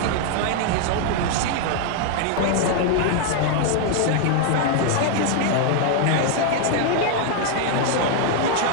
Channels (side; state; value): both; different; correlation 0.00